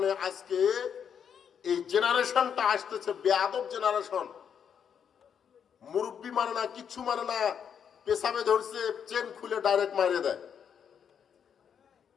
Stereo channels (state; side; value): quieter; right; 7.8 dB